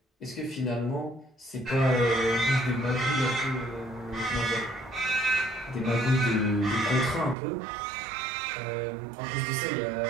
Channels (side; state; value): left; drops out; at 7.4 s